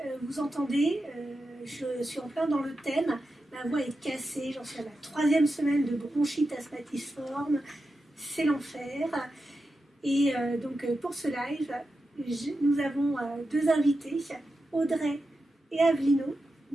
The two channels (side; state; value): both; normal; correlation 0.90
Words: vous entendez, je suis en plein dans le thème, ma voix est cassée, j'en suis à la 3e semaine de bronchite asthmatiforme, c'est l'enfer. Et donc pour ce live, nous avons deux invités, Audrey et Avelino.